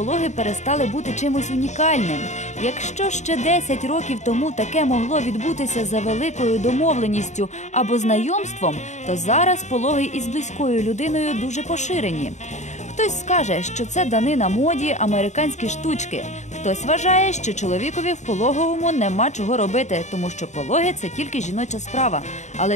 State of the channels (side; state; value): right; late; 0.34 ms